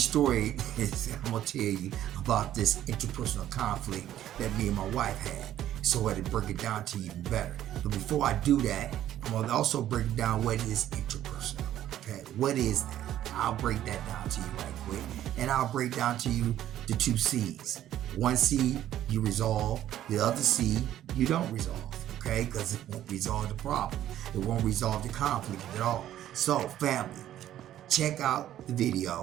is, I'm going to tell you about this interpersonal conflict that me and my wife had, so I had to break it down to you even better. But before I do that, I'm going to also break down what is interpersonal. Okay, what is that? I'll break that down to you right quick, and I'll break down to you the two C's. One C, you resolve. The other C, you don't resolve. Okay, because it won't resolve the problem. It won't resolve the conflict at all. So, family, check out the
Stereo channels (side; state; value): left; quieter; 12.2 dB